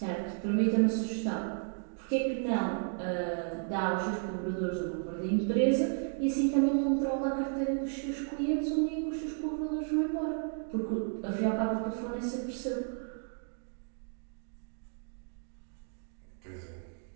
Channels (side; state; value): left; silent; 56 dB below the other